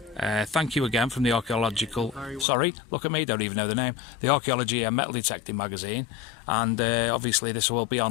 Thank you again from the Archaeological... Sorry, look at me, don't even know the name. The Archaeology and Metal Detecting magazine. And obviously this will be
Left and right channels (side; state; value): right; drops out; at 2.5 s